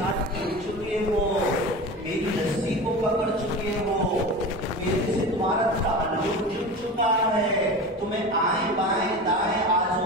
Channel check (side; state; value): both; normal; correlation 0.30